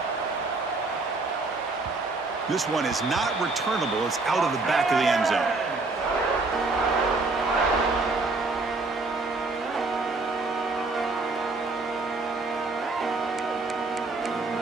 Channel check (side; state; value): left; quieter; 3.6 dB